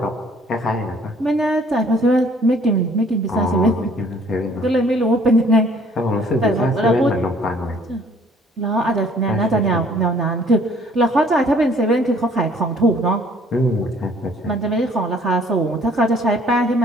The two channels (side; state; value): both; normal; correlation 0.58